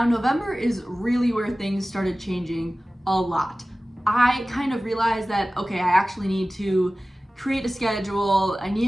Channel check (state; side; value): normal; both; correlation 0.97